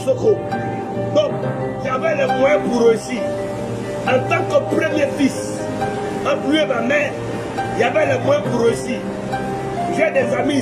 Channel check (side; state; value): both; identical; correlation 1.00